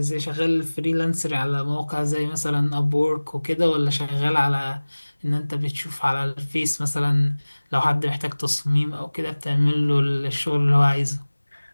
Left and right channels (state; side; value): inverted; both; correlation -1.00